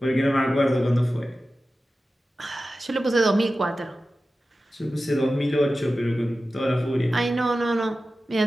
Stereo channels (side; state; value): both; normal; correlation 0.94